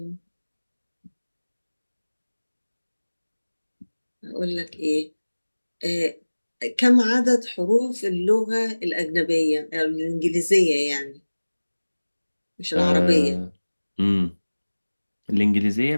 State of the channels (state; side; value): inverted; both; correlation -1.00